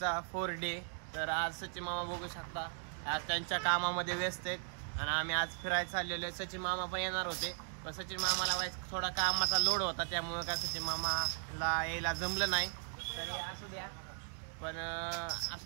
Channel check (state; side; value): silent; left; 53 dB below the other